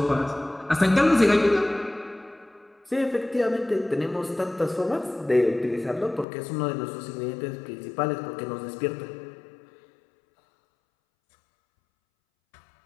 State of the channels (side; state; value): right; drops out; at 6.2 s